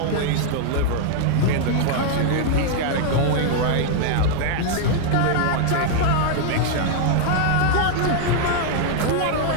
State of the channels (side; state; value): both; different; correlation -0.01